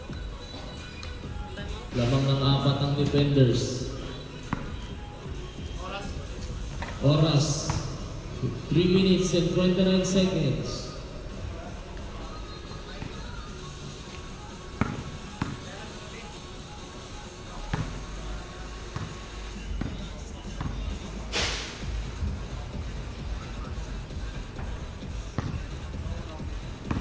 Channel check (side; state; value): both; identical; correlation 1.00